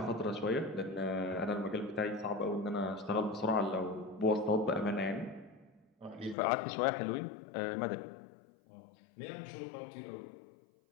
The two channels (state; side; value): drops out; right; at 6.4 s